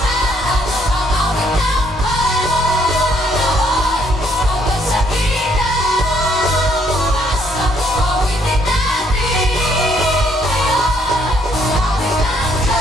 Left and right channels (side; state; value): both; normal; correlation 0.68